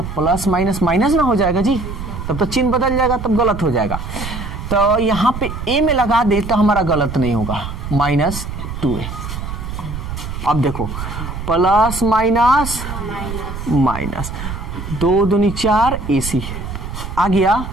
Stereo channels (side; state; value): right; noise; rumble, 7 dB below the sound